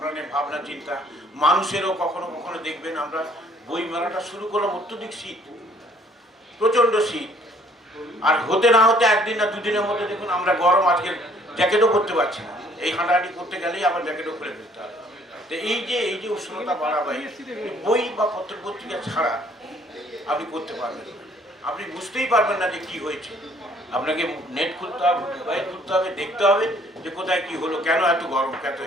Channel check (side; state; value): both; normal; correlation 0.60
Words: ভাবনা চিন্তা, মানুষেরও কখনো কখনো দেখবেন আমরা বই মেলাটা শুরু করলাম, অত্যধিক শীত, প্রচণ্ড শীত, আর হতে না হতে 1 দিন না 2 দিনের মধ্যে দেখুন আমরা গরম, আজকে জ্যাকেটও পরতে পারছি না। এই হাঁটাহাঁটি করতে গেলেই আবার জ্যাকেটও খুলে ফেলতে হবে। তো এই যে উষ্ণতা বাড়াবে, বই বা পত্রিকা ছাড়া আপনি করতে পারবেন না, আপনি বুঝতেই পারবেন না যে কি হয়েছে। আপনাকে নেট খুলতে হবে, মোবাইল খুলতে হবে, দেখতে হবে যে কোথায় কি হলো, কেন এত গরম, কত